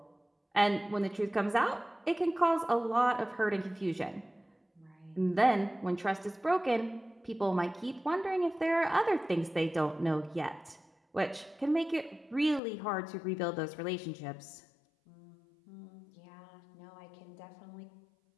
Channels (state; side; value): drops out; right; at 12.6 s